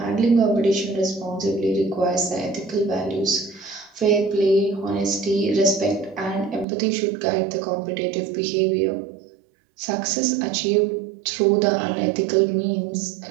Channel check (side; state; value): left; drops out; at 6.7 s